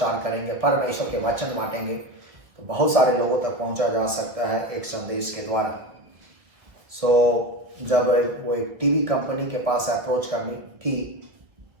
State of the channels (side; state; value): left; late; 1.6 ms